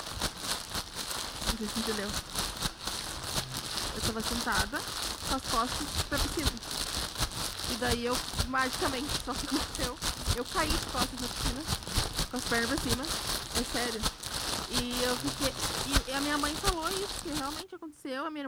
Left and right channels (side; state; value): both; identical; correlation 1.00